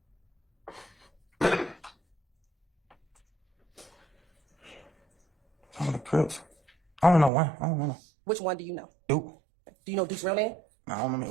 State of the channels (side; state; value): left; drops out; at 7.3 s